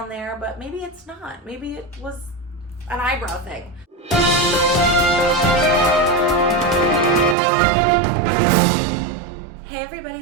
there, but maybe it's not. Maybe it was an eyebrow thing. Hey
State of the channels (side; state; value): left; drops out; at 7.4 s